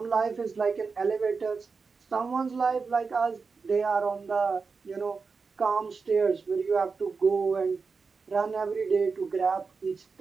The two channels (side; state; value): left; quieter; 4.8 dB